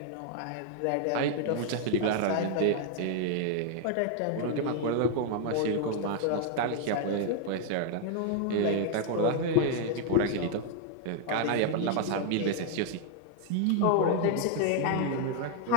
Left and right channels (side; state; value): both; different; correlation 0.00